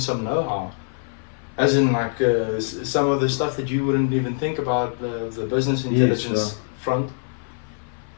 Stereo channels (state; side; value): silent; right; 57 dB below the other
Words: know-how. As in, like some of the stuff that you wouldn't even think about, the business intelligence front,